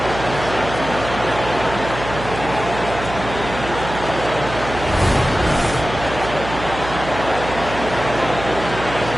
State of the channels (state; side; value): noise; right; hum, 9 dB below the sound